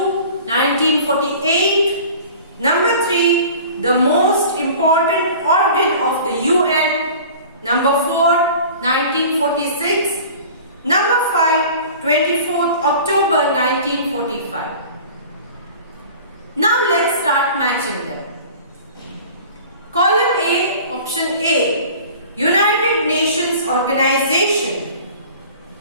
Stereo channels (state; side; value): inverted; both; correlation -0.43